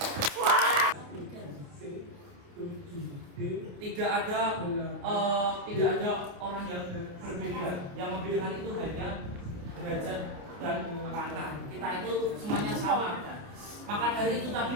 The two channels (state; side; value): late; left; 28 ms